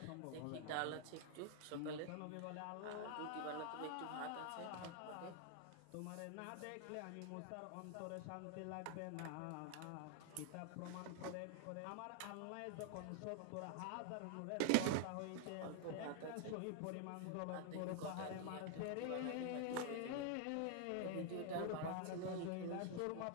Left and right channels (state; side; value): different; both; correlation 0.00